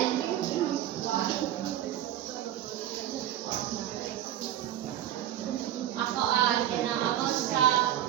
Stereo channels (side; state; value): left; quieter; 12.0 dB